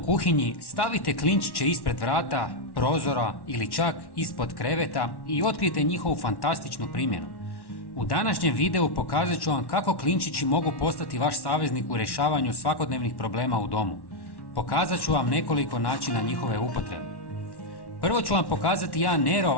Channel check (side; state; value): right; late; 1.1 ms